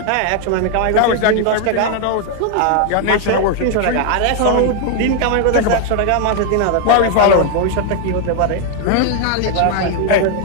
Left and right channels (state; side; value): different; both; correlation 0.00